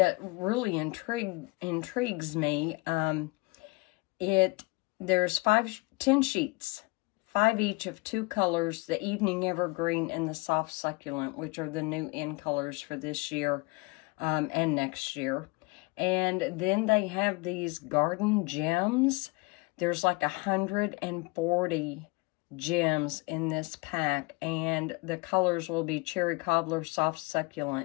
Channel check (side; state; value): right; quieter; 26.0 dB